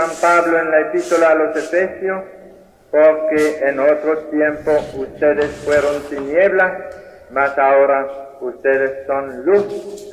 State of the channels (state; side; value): identical; both; correlation 1.00